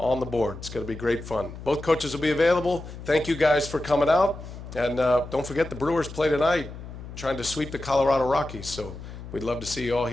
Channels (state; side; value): noise; left; hum, 12 dB below the sound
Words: the board. It's going to be great fun. Both coaches will be available. Thank you guys for coming out, and don't forget the Brewers play tonight, trying to sweep the Colorado Rockies, so we'd love to see you all